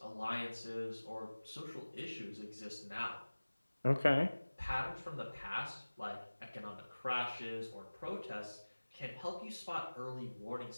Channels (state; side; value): inverted; both; correlation -1.00